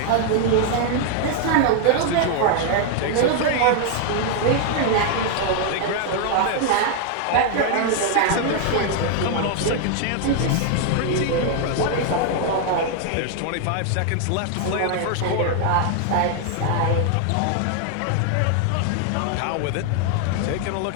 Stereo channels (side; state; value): both; different; correlation 0.00